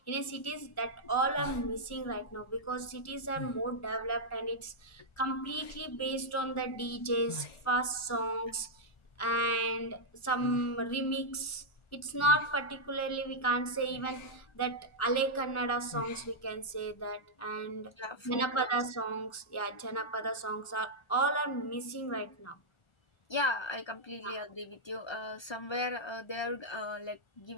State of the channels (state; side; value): late; right; 1.4 ms